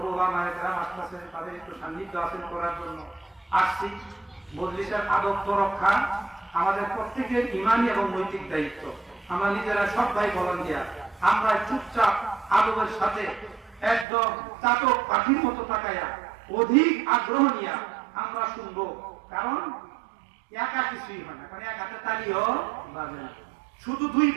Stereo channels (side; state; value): left; drops out; at 14.1 s